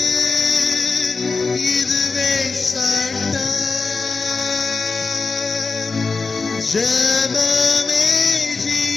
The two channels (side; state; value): right; quieter; 4.2 dB